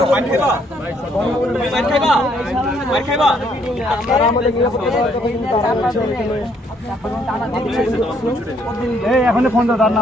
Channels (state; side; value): normal; both; correlation 0.68